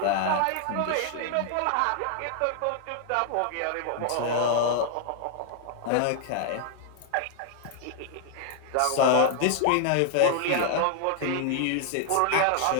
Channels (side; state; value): both; different; correlation 0.00